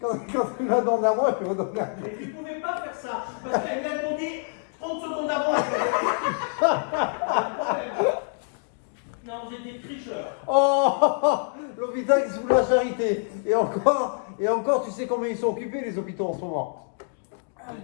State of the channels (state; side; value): silent; right; digital silence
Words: tu m'as demandé à moi, je vais redonner à lui. Mais tu pouvais pas faire ça. Parce qu'elle lui a demandé 30 secondes avant. Non, vous êtes des tricheurs. Oh, l'hôpital qui se fout de la charité. Et encore, tu sais combien ils sont occupés, les hôpitaux en ce moment.